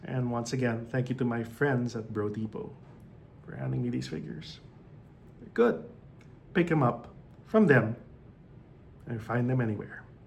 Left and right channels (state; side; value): identical; both; correlation 1.00